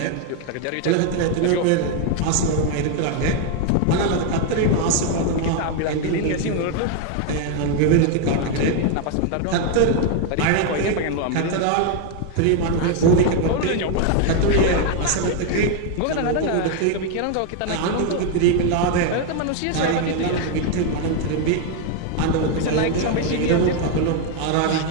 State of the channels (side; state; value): both; different; correlation 0.01